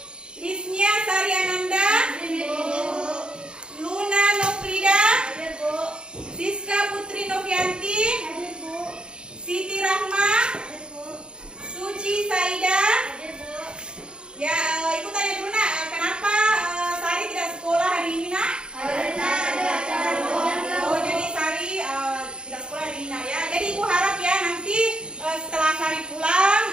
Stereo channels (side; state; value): left; late; 0.051 ms